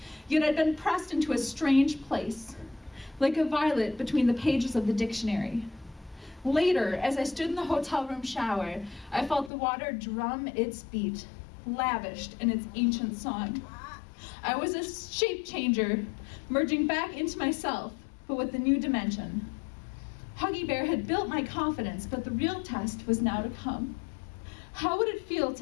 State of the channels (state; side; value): drops out; right; at 9.5 s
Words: yet I'd been pressed into a strange place, like a violet between the pages of the dictionary. Later, as I stood in the hotel room shower, I felt the water drum its beat, lavished in its ancient song. I was a shape changer, merging back into myself, but with a new dimension. Huggy Bear had built my confidence, but the real test was now to come. How would it feel